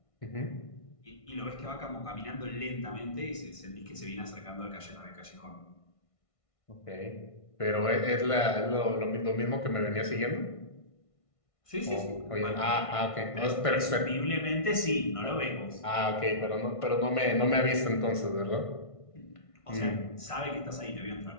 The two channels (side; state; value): right; late; 1.5 ms